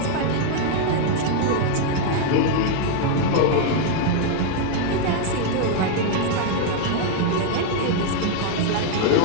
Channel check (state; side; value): different; both; correlation 0.00